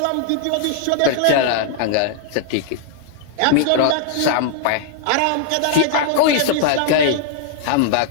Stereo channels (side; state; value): both; different; correlation -0.01